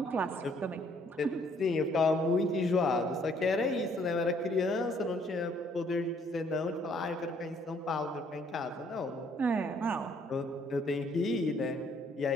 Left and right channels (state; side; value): normal; both; correlation 0.65